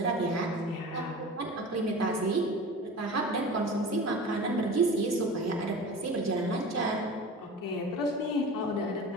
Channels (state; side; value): normal; both; correlation 0.35